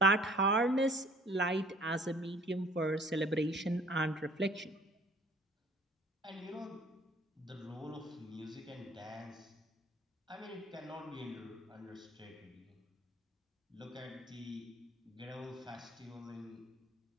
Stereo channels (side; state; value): both; normal; correlation 0.53